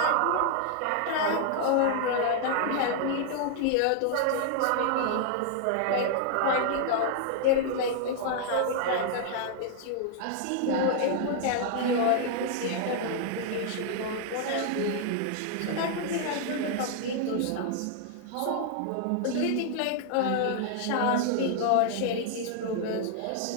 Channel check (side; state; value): both; different; correlation 0.00